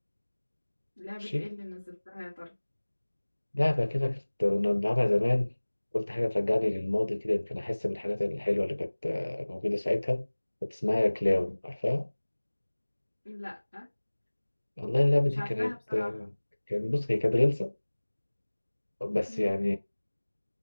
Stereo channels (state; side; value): inverted; both; correlation -1.00